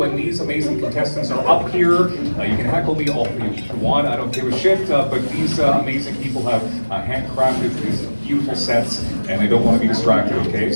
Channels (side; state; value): both; inverted; correlation -1.00